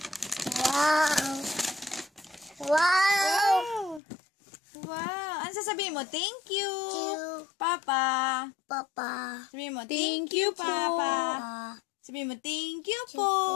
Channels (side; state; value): right; drops out; at 4.0 s